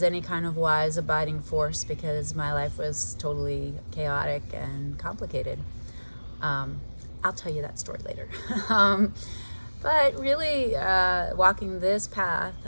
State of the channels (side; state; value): both; inverted; correlation -1.00